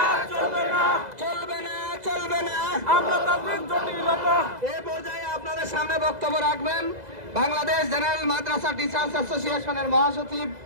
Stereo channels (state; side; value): late; left; 2.0 ms